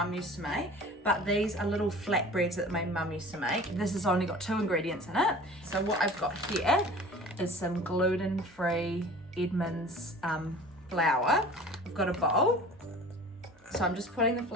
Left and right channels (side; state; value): both; normal; correlation 0.42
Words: used to make, but these are little flatbreads that my mum used to make. This has only got 2 ingredients in it. So what I've got here is some gluten-free Edmonds flour. I've got a bowl. So I'm just putting the